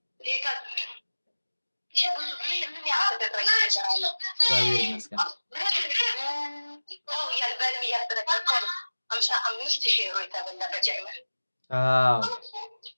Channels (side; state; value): both; inverted; correlation -1.00